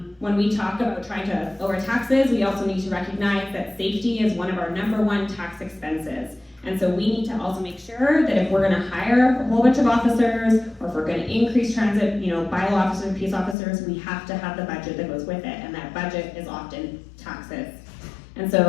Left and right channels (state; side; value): drops out; right; at 13.6 s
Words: when we talk about trying to lower taxes, we also need to recognize that safety is one of our #1 tax expenses. And so we need to also make sure that if we're gonna hire a whole bunch of officers, or if we're gonna increase transit, bylaw officers, peace officers, we have to have the budget that goes with it, and that budget is often taxes. And